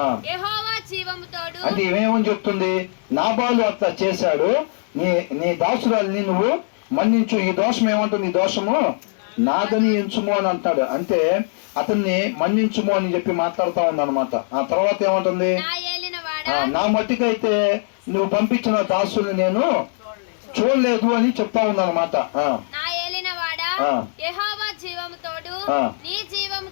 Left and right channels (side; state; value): right; silent; digital silence